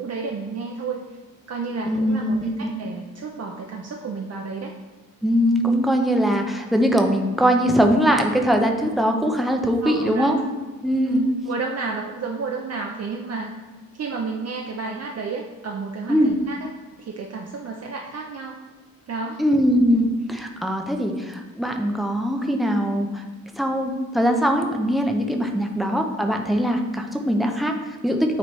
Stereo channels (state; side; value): normal; both; correlation 0.71